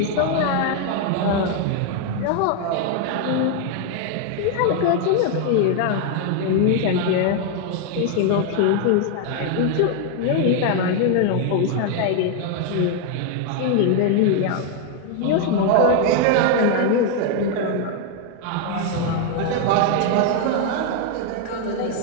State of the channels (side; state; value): both; different; correlation 0.00